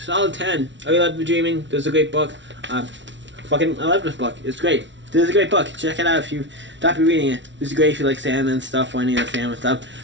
10. I really love The Dreaming. This is a great book. I love this book. It's great. This is a great book. Check it out if you stop reading it. This is great if you like Sam and stuff, or any other Sam and stuff.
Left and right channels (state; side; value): late; left; 0.54 ms